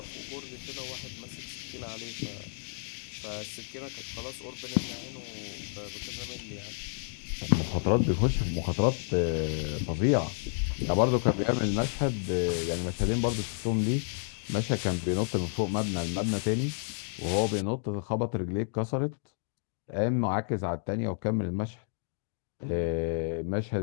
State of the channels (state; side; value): silent; right; digital silence